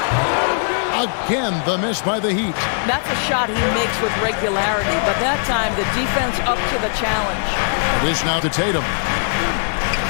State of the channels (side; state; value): right; silent; digital silence